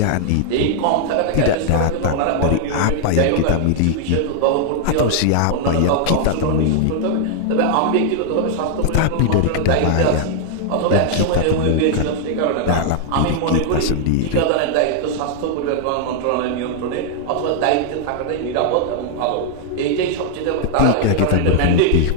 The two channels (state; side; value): different; both; correlation 0.00